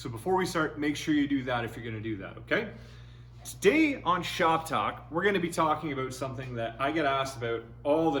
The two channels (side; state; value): both; identical; correlation 1.00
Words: before we start, make sure you do that if you're gonna do that, okay? Today on Shop Talk, we're gonna be talking about something that I get asked about all the